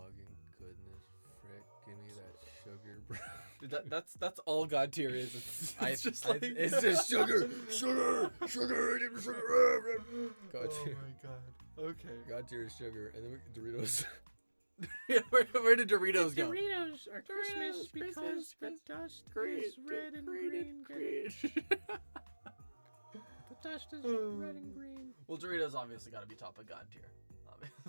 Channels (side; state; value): both; inverted; correlation -1.00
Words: goodness, frick! Give me that sugar, bro. Dude, that's all God tier is. It's just like it's just sugar. Give me sugar. God Oh tier. my god. Okay. God tier is sugar, and then Doritos. Yeah, where did Doritos go? Doritos are Christmas because the dust is red and green. The dust is red and green. Well, Doritos obviously got to be top of God tier.